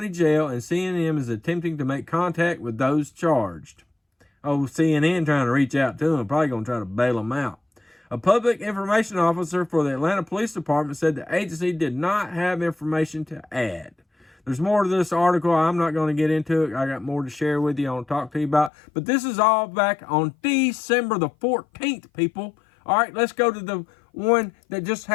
Jail, and CNN is attempting to make contact with those charged. Oh, CNN trying to reach out to them, probably going to try to bail them out. A public information officer for the Atlanta Police Department said the agency did not have information to add. There's more to this article. I'm not going to get into it. I got more to share with you. I want to talk to you about. But this is all back on December the 14th, people. All right, let's go to the one that just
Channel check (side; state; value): right; drops out; at 18.7 s